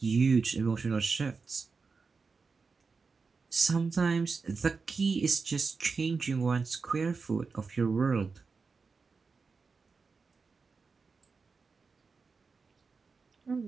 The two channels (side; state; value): left; quieter; 4.7 dB